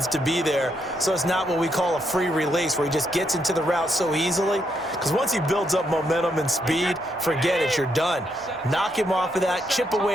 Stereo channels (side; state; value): both; normal; correlation 0.78